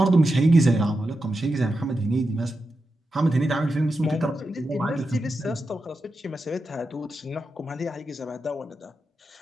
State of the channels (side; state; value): both; normal; correlation 0.89